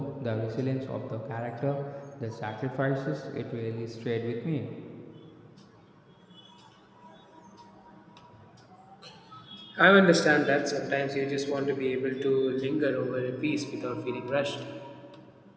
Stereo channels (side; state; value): both; identical; correlation 1.00